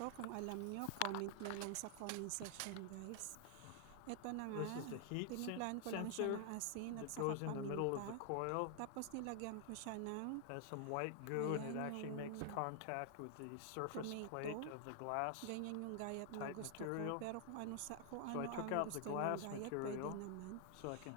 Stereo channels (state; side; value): different; both; correlation 0.00